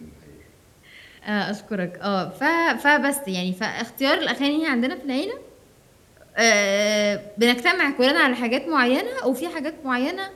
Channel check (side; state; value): both; identical; correlation 1.00